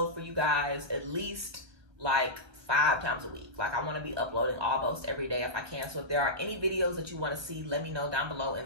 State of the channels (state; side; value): late; left; 1.2 ms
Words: for you guys at least like 5 times a week. Like, I want to be uploading almost every day if I can. So if there are any videos that you want to see, let me know down below in